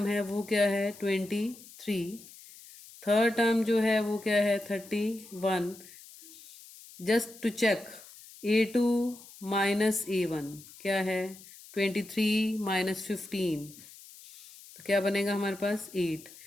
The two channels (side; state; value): left; noise; hiss, 19 dB below the sound